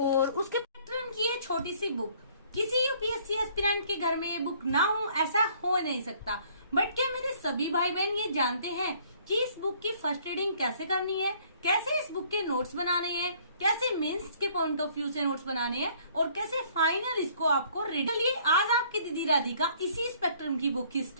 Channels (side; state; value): both; inverted; correlation -0.60